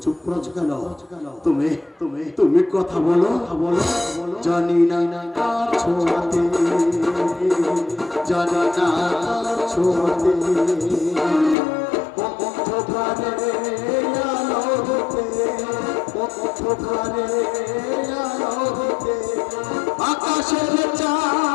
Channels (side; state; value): right; drops out; at 11.6 s